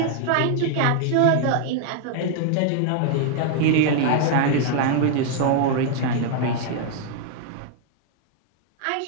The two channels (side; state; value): both; different; correlation 0.00